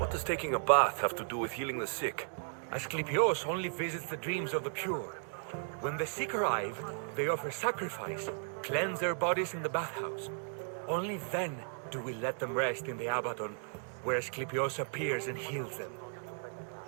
does taking a bath have to do with healing the sick? Asclepios only visits the dreams of the pure. When the sick arrive, they offer sacrifice, cleanse their bodies in the bathhouse. Only then do we let them rest in the Abaddon, where Asclepios appears and heals them.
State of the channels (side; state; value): left; silent; 54 dB below the other